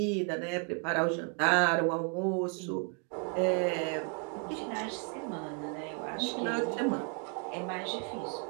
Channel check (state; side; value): quieter; left; 39.8 dB